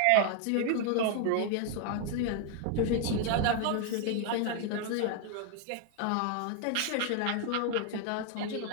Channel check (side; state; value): both; different; correlation 0.00